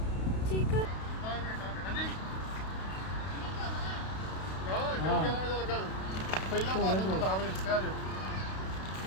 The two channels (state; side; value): late; right; 32 ms